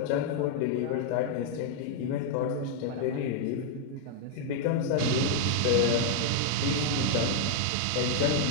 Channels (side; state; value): both; different; correlation 0.00